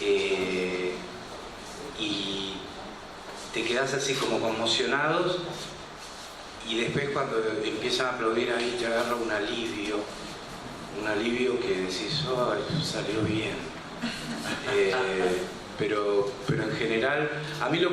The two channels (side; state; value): both; identical; correlation 1.00